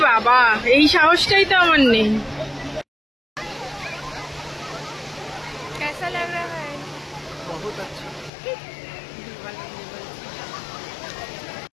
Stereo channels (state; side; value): drops out; right; at 8.3 s